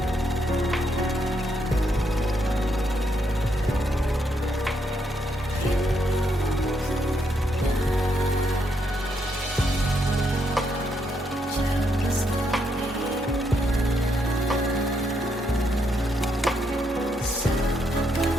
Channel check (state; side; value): normal; both; correlation 0.77